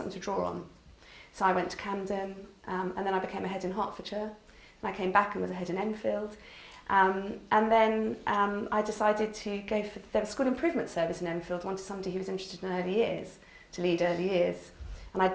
to draw on. So I went to Camden, and then I became a head in Hertfordshire, and I came back and was a head in Enfield. And then I decided to go for, there was a school improvement service in Enfield, wanted somebody who was interested in early years, to lead early years. And I'd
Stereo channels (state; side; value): identical; both; correlation 1.00